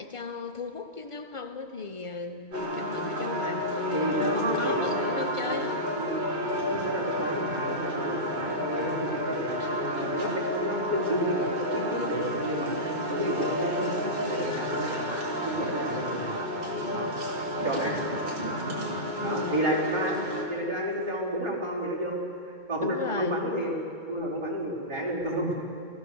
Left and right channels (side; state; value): left; late; 2.2 ms